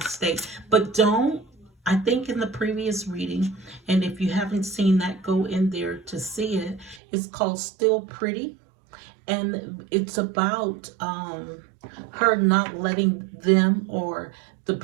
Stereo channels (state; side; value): drops out; left; at 7.0 s